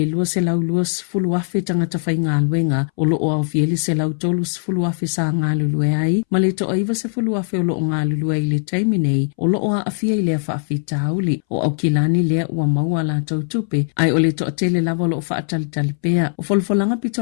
lua se lau lua sfulu afe tangata whai ngā luenga o lo o au fieli se lau tolu sfulu afe sa ngā lulue ai ma le to aiva se fulu afe o lo o ngā lulue i le taiminei o lo o a afia i lea whaafi tauli o au kilani lea ua maua la tau tupe ai o le to atele lava o lo o whaatalitali pea o folfolanga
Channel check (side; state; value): right; silent; 65 dB below the other